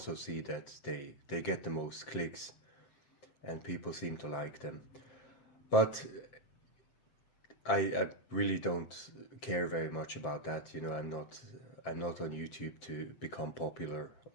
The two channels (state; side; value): late; right; 7.5 ms